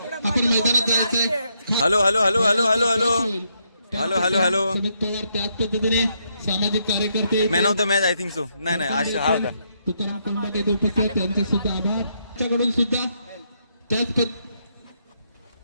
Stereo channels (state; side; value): inverted; both; correlation -0.77